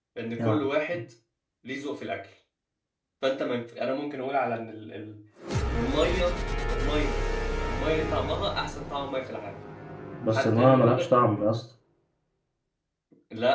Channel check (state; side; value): identical; both; correlation 1.00